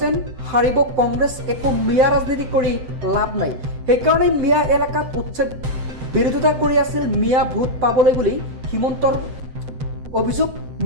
হাৰিব কংগ্ৰেছ, একো মিয়া ৰাজনীতি কৰি লাভ নাই। সেইকাৰণে মিয়া এলেকাত উচ্ছেদ বিৰোধিতা কৰি আছিল মিয়া ভোট পাবলৈ বুলি হিমন্তৰ অভিযোগ।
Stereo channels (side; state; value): left; late; 7.8 ms